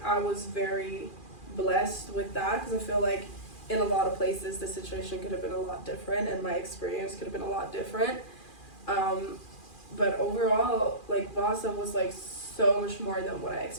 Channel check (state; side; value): late; right; 2.4 ms